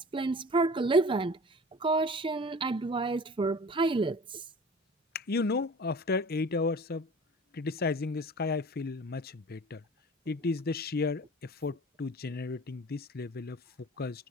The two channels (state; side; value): normal; both; correlation 0.42